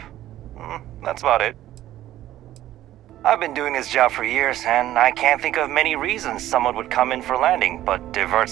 That's about it. I've been doing this job for years, and I can't think of many reasons someone would come in for landing, but divert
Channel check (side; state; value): left; quieter; 13.6 dB